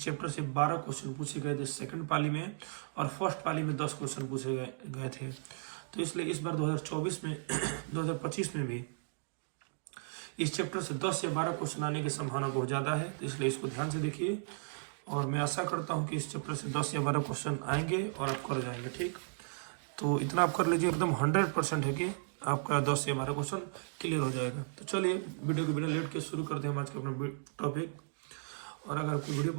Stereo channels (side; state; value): left; silent; digital silence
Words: चैप्टर से 12 क्वेश्चन पूछे गए थे सेकंड पाली में, और फर्स्ट पाली में 10 क्वेश्चन पूछे गए थे। तो इसलिए इस बार 2024 में 2025 में भी इस चैप्टर से 10 से 12 क्वेश्चन आने की संभावना बहुत ज़्यादा है, तो इसलिए इसको ध्यान से देखिए। और मैं आशा करता हूं कि इस चैप्टर से 10 या 12 क्वेश्चन आएंगे और आप कर जाएंगे, ठीक। तो इतना आप कर लीजिए, एकदम 100% है कि आपका 10 या 12 क्वेश्चन क्लियर हो जाएगा। तो चलिए वीडियो को बिना लेट के शुरू करते हैं हम आज का अपना टॉपिक। और अगर आपको वीडियो